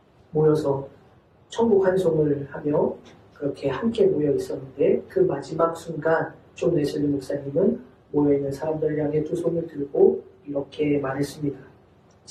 모여서 천국 환송을 하며 그렇게 함께 모여 있었는데 그 마지막 순간 존 웨슬리 목사님은 모여있는 사람들을 향해 두 손을 들고 이렇게 말했습니다.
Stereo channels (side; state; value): both; identical; correlation 1.00